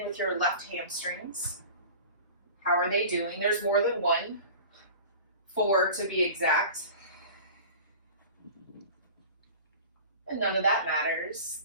with your left hamstrings. How are they doing? There's more than one. 4 to be exact. And none of that matters.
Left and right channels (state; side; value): inverted; both; correlation -0.39